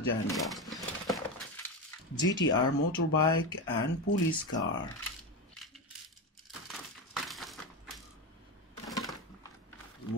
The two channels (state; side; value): normal; both; correlation 0.16